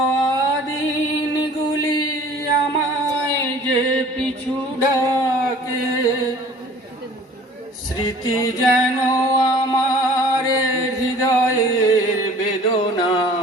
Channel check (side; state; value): both; normal; correlation 0.49